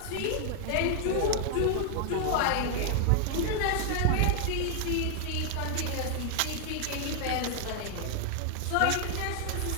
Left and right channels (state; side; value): different; both; correlation 0.00